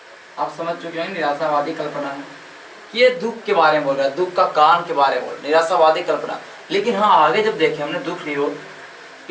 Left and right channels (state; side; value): identical; both; correlation 1.00